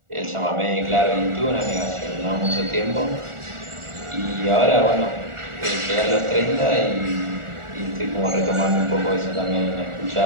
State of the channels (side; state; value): left; late; 1.4 ms